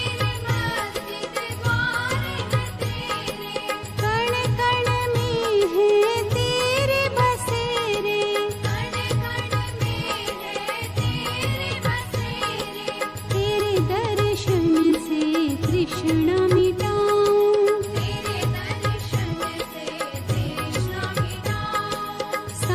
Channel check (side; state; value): both; identical; correlation 1.00